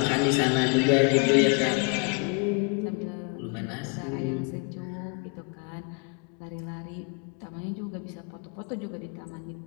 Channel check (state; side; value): quieter; right; 33.6 dB